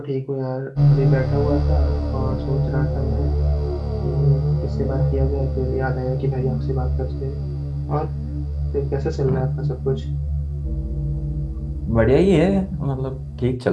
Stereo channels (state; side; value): identical; both; correlation 1.00